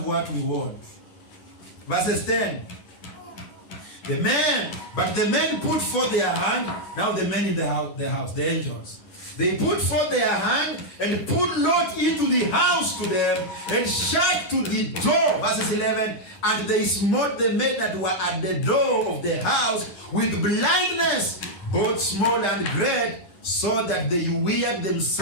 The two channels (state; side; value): late; right; 10 ms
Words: what we want. Verses 10. But the men put forth their hand. Now the men in the house, the angels. They put forth their hand and put Lot into the house to them and shut to the door. Verses 11. And they smote the men that were at the door of the house with blindness, both small and great, so that they wearied